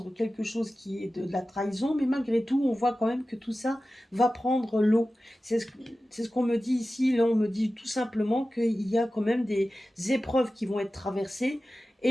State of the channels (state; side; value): normal; both; correlation 0.95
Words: quelque chose qui est de la trahison, mais malgré tout, on voit quand même que tout ça va prendre l'eau. C'est ce qu'on me dit ici. Là, on me dit tout simplement qu'il y a quand même des épreuves qui vont être traversées,